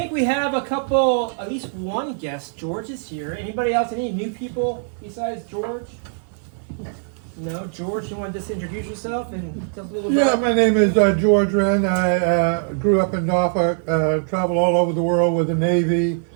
we have a couple, at least one guest. George is here. Anybody else? Any new people besides George? No, George, you want to just introduce yourself and tell us a little bit? Yeah, my name is George Wren. I grew up in Norfolk, traveled all over the world with the Navy,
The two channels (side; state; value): left; silent; digital silence